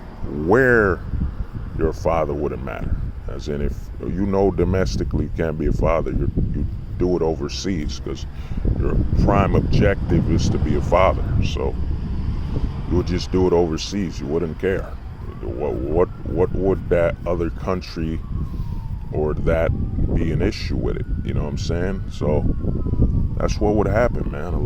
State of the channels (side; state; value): both; identical; correlation 1.00